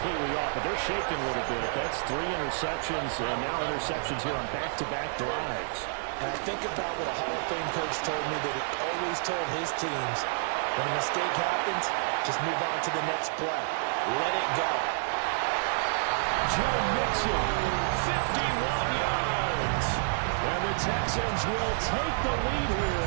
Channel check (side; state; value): left; silent; digital silence